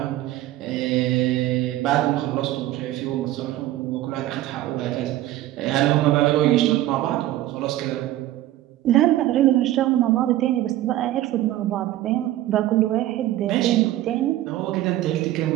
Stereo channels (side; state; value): left; quieter; 14.6 dB